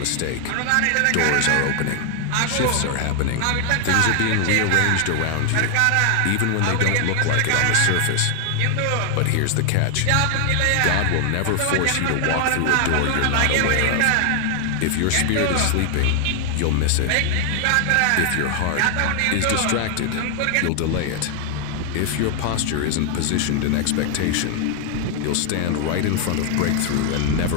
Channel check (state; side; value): different; both; correlation 0.00